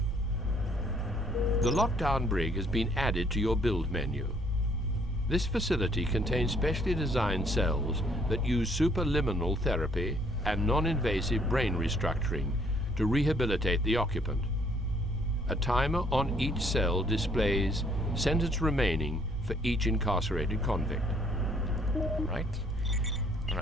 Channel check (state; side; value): normal; both; correlation 0.64